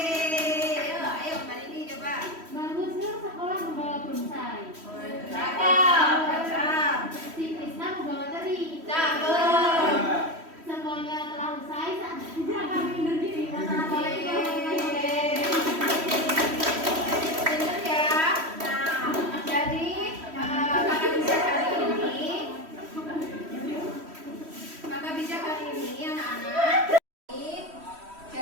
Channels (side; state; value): left; late; 3.1 ms